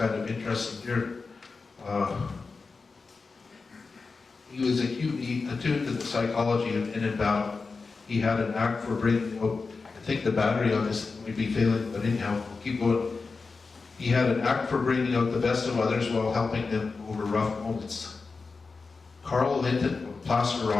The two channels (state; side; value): quieter; right; 4.3 dB